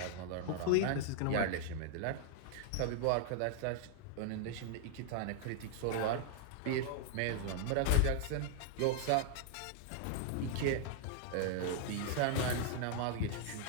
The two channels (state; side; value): different; both; correlation -0.01